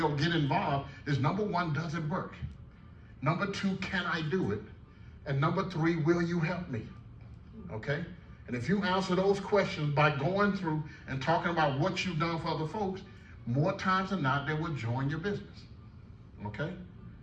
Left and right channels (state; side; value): identical; both; correlation 1.00